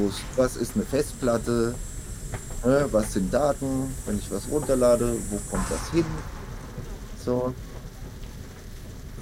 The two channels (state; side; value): identical; both; correlation 1.00